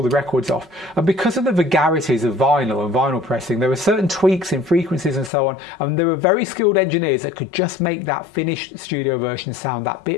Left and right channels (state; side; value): drops out; right; at 5.3 s